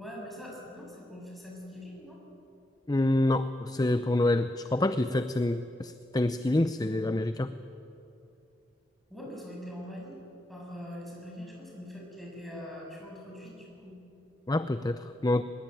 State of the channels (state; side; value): normal; both; correlation 0.83